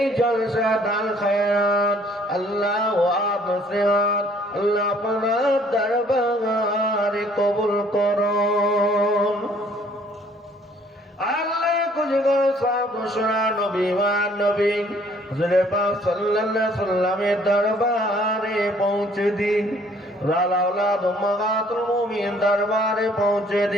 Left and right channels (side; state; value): both; normal; correlation 0.60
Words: জলসা দান খায়রাত আল্লাহ ওয়াব নসিহত আল্লাহ আপনার দরবারে কবুল করুন। আল্লাহ কুজগর সাহেব শোনা নবী মান নবী হুজুরে পাক সাল্লাল্লাহু আলাইহি সাল্লামের দরবারে পৌঁছে দিন। লাউলাদ উম্মাহাতুল মুমিন দরবারে পৌঁছে